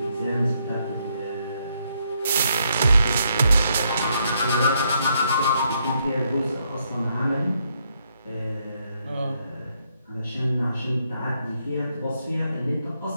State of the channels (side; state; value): both; inverted; correlation -0.75